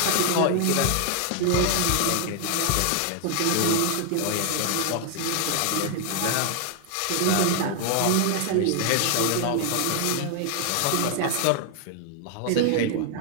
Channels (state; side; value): different; both; correlation 0.00